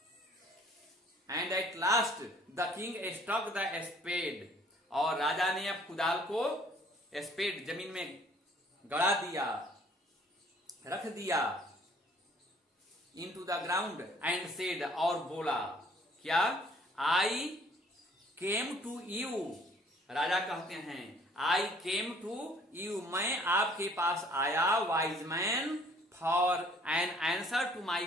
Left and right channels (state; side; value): normal; both; correlation 0.58